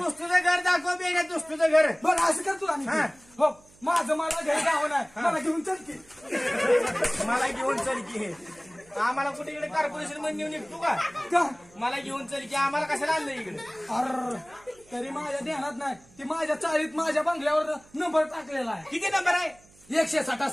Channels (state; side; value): noise; right; hum, 27 dB below the sound